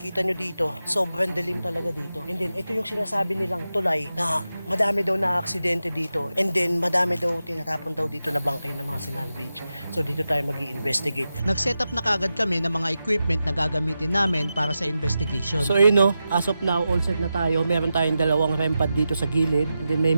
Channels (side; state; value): both; inverted; correlation -0.91